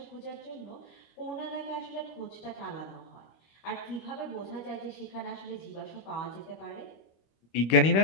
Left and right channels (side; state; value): right; late; 26 ms